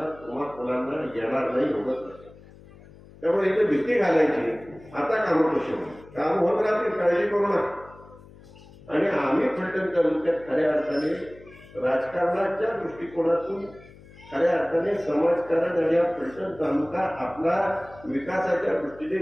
किंवा मुलांना येणार नाही, होत नाही. त्यामुळे इथं भीती घालायची. आता कामं कशी होईल, काम होत राहतील, काळजी करू नका. आणि आम्ही फलटण तालुक्यात खऱ्या अर्थाने राजकारणाच्या दृष्टिकोनातून खऱ्या अर्थाने समाजकारण आणि हा फलटण तालुका आपला विकासाच्या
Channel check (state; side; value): noise; left; hum, 22 dB below the sound